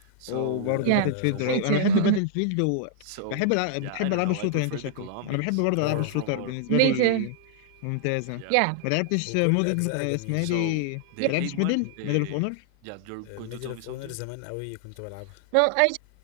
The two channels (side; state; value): both; different; correlation 0.00